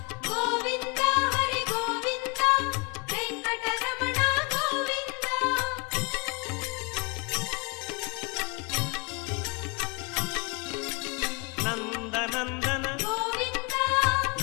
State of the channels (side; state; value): right; quieter; 30.2 dB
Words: గోవిందా హరి గోవిందా వెంకటరమణ గోవిందా నందనందన గోవిందా